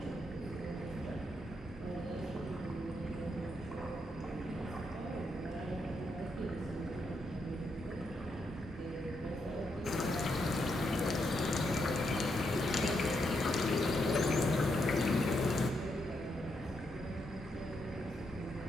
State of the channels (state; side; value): normal; both; correlation 0.80